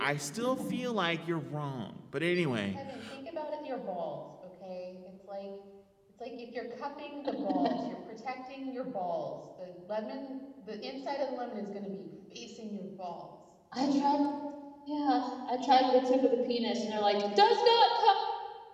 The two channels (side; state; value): both; identical; correlation 1.00